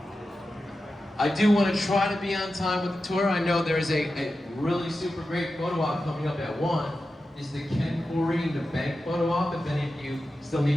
I do want to try to be on time with the tour. I know there's a really super great photo op coming up at 1. Is the Ken Corey and the bank photo op. If any of you still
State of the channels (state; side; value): normal; both; correlation 0.92